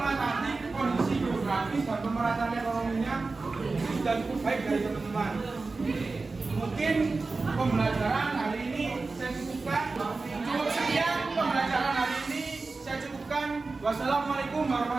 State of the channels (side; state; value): left; quieter; 3.8 dB